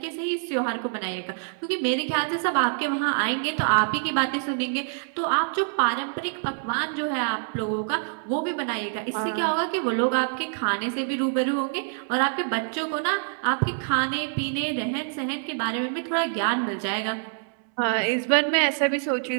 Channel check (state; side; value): silent; left; 61 dB below the other